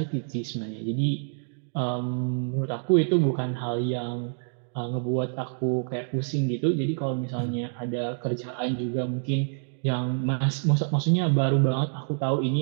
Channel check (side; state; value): left; silent; 60 dB below the other